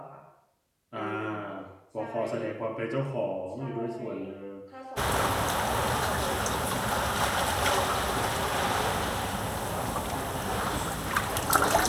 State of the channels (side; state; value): both; identical; correlation 1.00